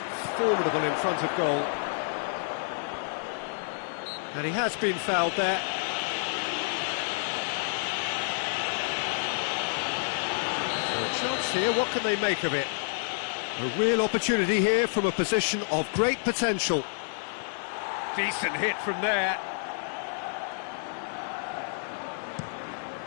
formidable in front of goal. And he has been fouled there. So a chance here, what can they make of it? A real opportunity here from a position of great potential. Decent hit from there.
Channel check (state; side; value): silent; right; digital silence